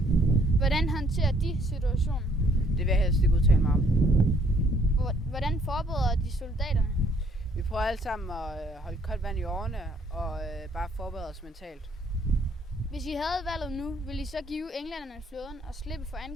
Hvordan håndterer de situationen? Det vil jeg helst ikke udtale mig om. Hvordan forbereder de soldaterne? Vi prøver alle sammen at holde koldt vand i årene og bare forberede os mentalt. Hvis I havde valget nu, ville I så give englænderne flåden og slippe for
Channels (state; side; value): normal; both; correlation 0.64